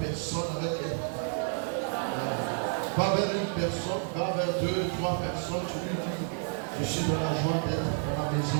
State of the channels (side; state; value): left; silent; 58 dB below the other